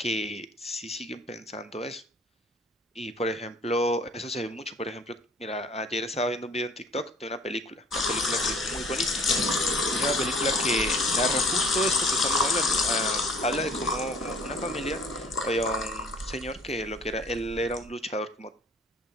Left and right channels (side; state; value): both; normal; correlation 0.52